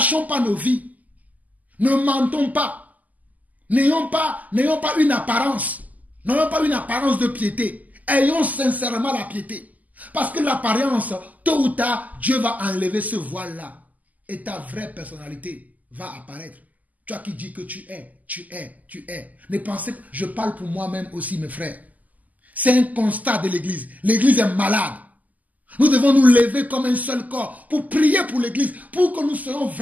pas nos vies. Ne mentons pas. N'ayons pas une apparence. N'ayons pas une apparence de piété. Ayons sincèrement la piété. Parce que l'apparence, tôt ou tard, Dieu va enlever ce voile-là. Et ta vraie personnalité va apparaître. Toi qui dis que tu es. Ne pensez pas, je parle pour moi-même aussi, mes frères. C'est un constat de l'Église. L'Église est malade. Nous devons nous lever comme un seul corps pour prier pour l'Église, pour que nous soyons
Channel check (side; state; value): left; late; 0.079 ms